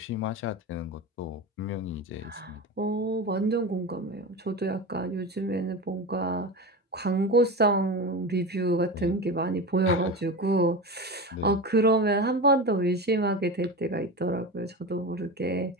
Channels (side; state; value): both; normal; correlation 0.24